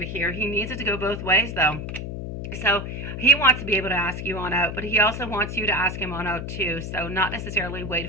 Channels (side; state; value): left; noise; hum, 6 dB below the sound